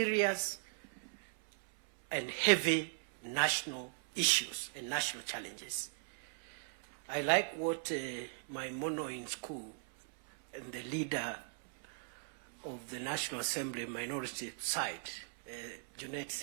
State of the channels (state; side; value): silent; left; 52 dB below the other